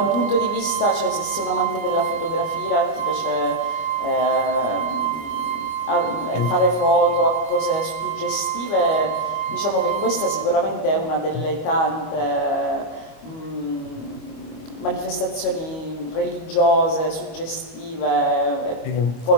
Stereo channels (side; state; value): right; late; 25 ms